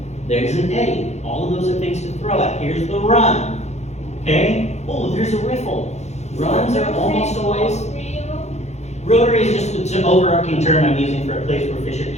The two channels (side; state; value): right; late; 0.33 ms